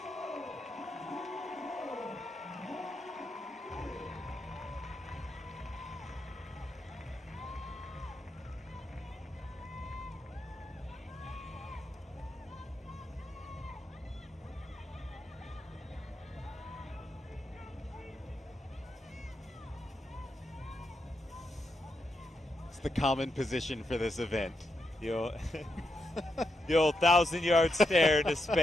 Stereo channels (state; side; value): normal; both; correlation 0.83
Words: The common position for this event. The old 1,000-yard stare into